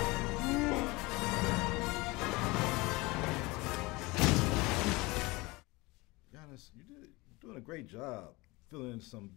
Giannis, you're doing a great job filling some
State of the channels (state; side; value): quieter; right; 23.3 dB